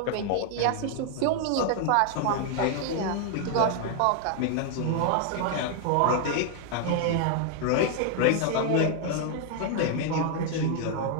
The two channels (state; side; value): different; both; correlation 0.00